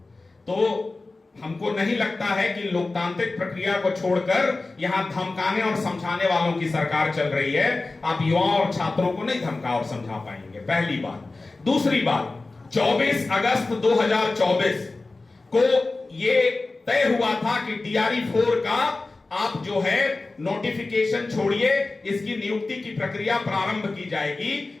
तो हमको नहीं लगता है कि लोकतांत्रिक प्रक्रिया को छोड़कर यहां धमकाने और समझाने वालों की सरकार चल रही है। आप युवाओं और छात्रों को नहीं धमका और समझा पाएंगे, पहली बात। दूसरी बात, 24 अगस्त 2024 को यह तय हुआ था कि DRE 4 का आप जो है नोटिफिकेशन छोड़िए, इसकी नियुक्ति की प्रक्रिया प्रारंभ की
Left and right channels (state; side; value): quieter; right; 3.4 dB